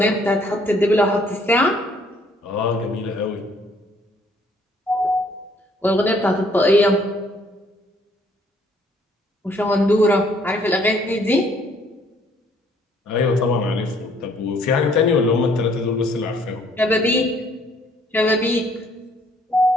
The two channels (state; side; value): normal; both; correlation 0.63